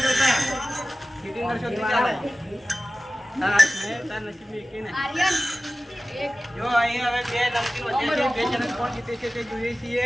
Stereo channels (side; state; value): both; normal; correlation 0.96